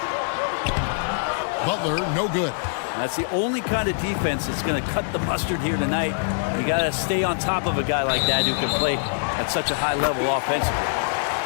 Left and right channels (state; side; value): silent; right; digital silence